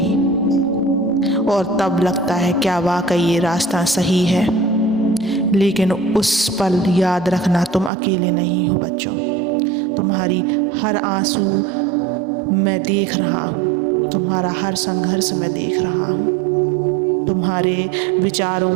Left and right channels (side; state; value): left; drops out; at 7.9 s